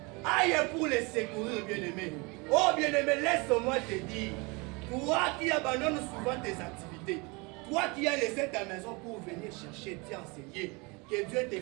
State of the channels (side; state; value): left; quieter; 27.9 dB